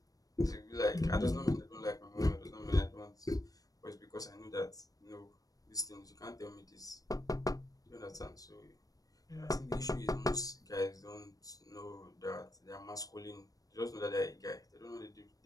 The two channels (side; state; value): right; late; 0.18 ms